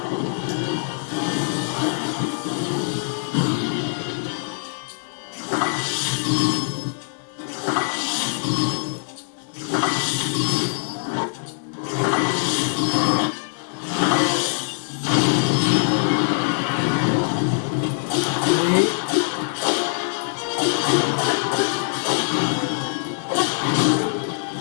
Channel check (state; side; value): silent; right; 63 dB below the other